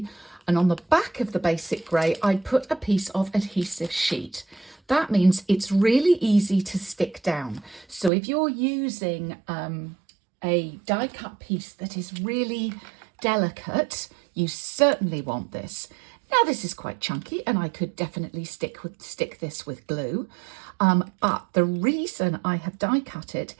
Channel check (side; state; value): left; drops out; at 8.1 s